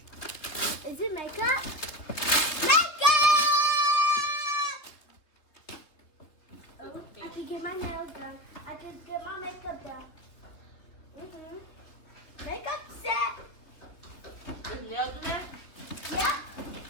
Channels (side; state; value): right; late; 3.4 ms